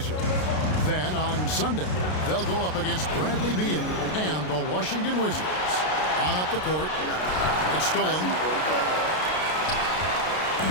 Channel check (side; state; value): right; late; 33 ms